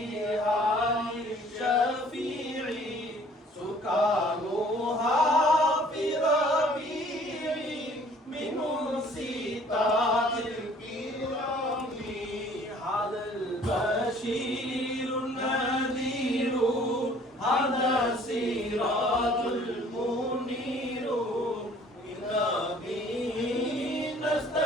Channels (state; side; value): normal; both; correlation 0.55